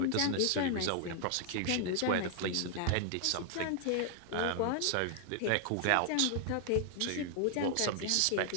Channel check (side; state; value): both; different; correlation 0.00